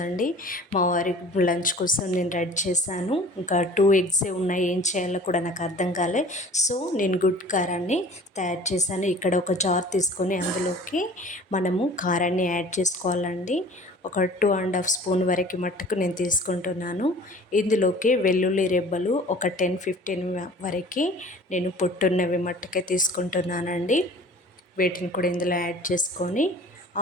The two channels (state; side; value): normal; both; correlation 0.46